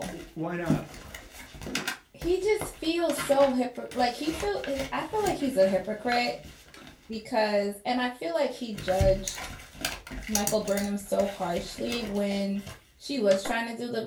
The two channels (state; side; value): identical; both; correlation 1.00